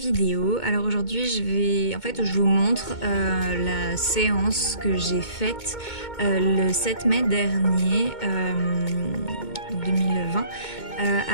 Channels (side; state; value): right; late; 2.2 ms